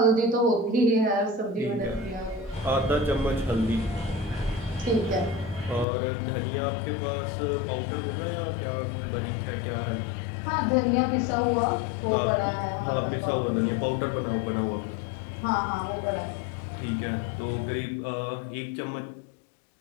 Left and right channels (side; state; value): right; drops out; at 5.9 s